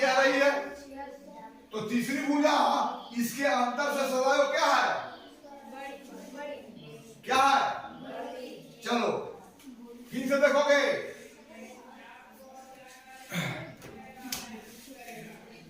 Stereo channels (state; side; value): identical; both; correlation 1.00